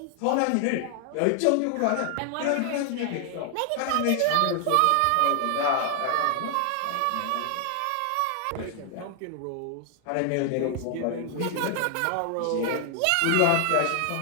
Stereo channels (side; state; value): both; different; correlation 0.00